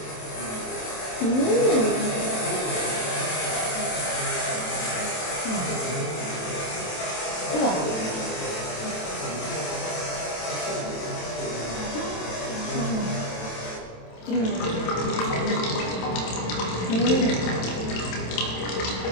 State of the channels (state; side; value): late; right; 27 ms